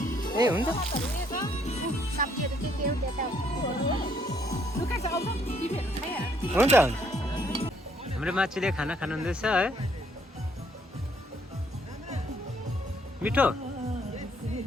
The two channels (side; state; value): both; normal; correlation 0.68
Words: ए हुन्छ सब्जीहरू के हो त्यो त लुका छ आउँछ टिभीहरू खाइहाल्छ। हुन्छ हाम्रो माछीले खाना खानुहुँदैछ है। मिठो